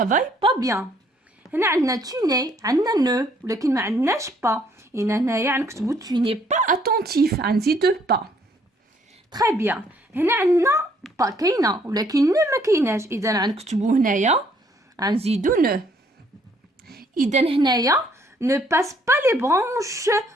pas bien. هنا عندنا tu n'es، عندنا نو ولكن ما عندناش با. هنايا غنكتبوا tu n'es pas attentif، غنزيدوه با. تري بيان. هنا عندنا با كاينه ولكن نو ما كايناش، اذا غنكتبوا هنايا غنزيدو نو. اذا هنايا ne passe pas les branches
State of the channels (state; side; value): normal; both; correlation 0.65